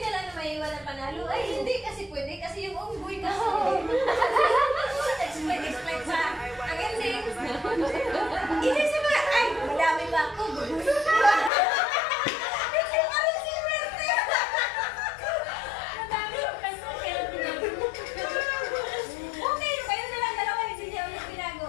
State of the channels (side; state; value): right; drops out; at 11.5 s